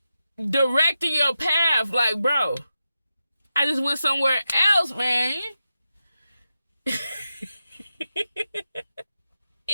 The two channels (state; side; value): inverted; both; correlation -0.89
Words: directing your path. Like, bro, I just went somewhere else, man.